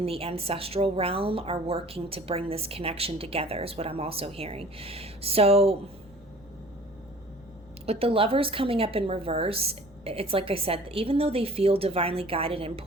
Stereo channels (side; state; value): right; noise; rumble, 28 dB below the sound